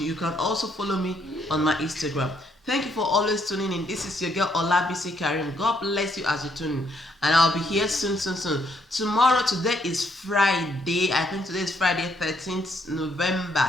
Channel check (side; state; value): both; normal; correlation 0.72